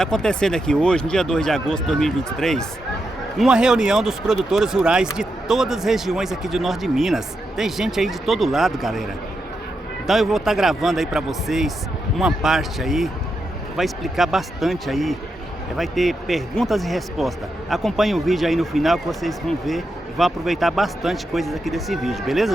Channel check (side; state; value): both; normal; correlation 0.85